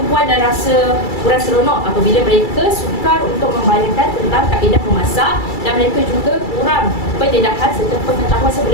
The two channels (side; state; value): right; late; 2.3 ms